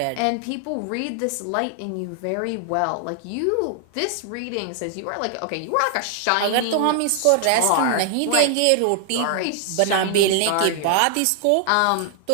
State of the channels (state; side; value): different; both; correlation 0.00